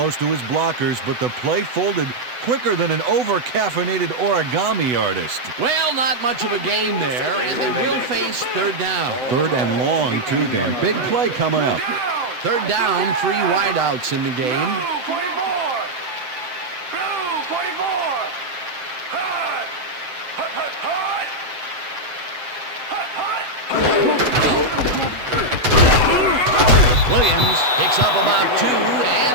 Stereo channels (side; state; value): left; late; 8.1 ms